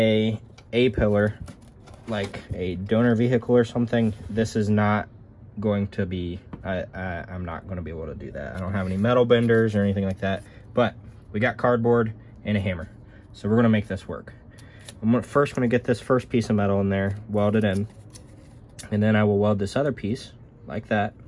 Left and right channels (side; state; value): both; identical; correlation 1.00